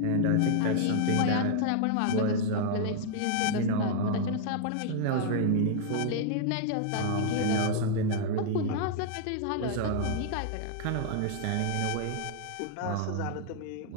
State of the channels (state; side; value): different; both; correlation -0.01